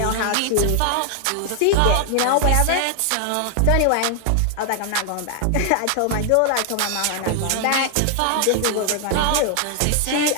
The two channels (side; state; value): both; different; correlation 0.00